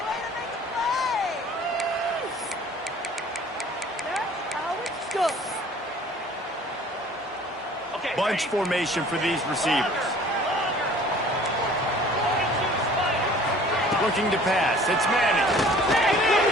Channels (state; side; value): normal; both; correlation 0.50